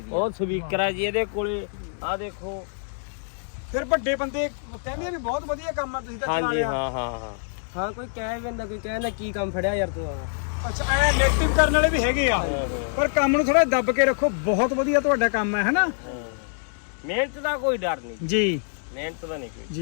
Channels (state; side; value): silent; right; digital silence